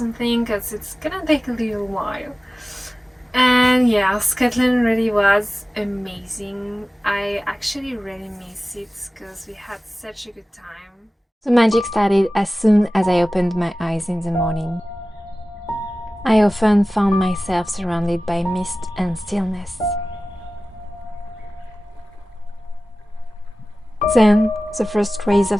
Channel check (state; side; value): normal; both; correlation 0.96